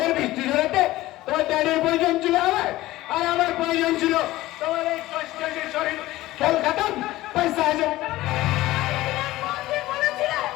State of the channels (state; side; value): quieter; right; 17.1 dB